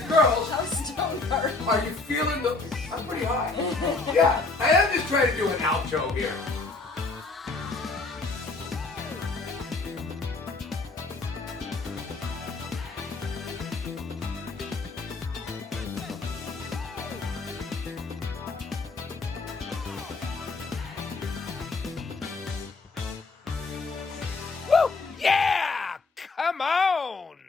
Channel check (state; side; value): quieter; right; 3.7 dB